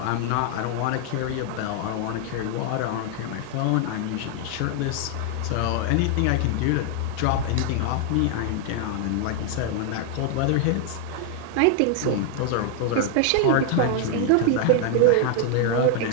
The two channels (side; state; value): both; different; correlation 0.00